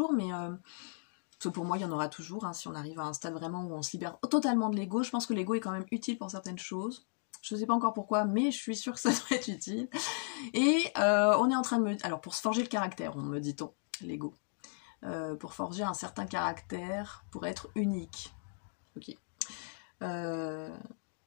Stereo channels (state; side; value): silent; right; 54 dB below the other